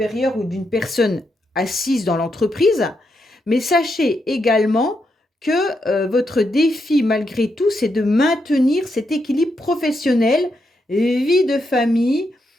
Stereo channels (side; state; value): both; normal; correlation 0.82